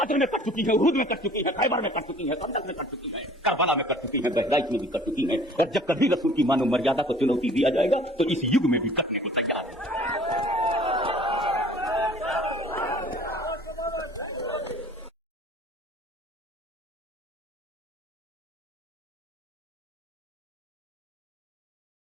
में कट चुकी है, उहद में कट चुकी है, खैबर में कट चुकी है, खंदक में कट चुकी है, करबला में कट चुकी है, बहराइच में भी कट चुकी है। और जब कभी रसूल की मानव मर्यादा को चुनौती दिया जाएगा तो इस युग में भी कटने को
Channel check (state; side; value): normal; both; correlation 0.50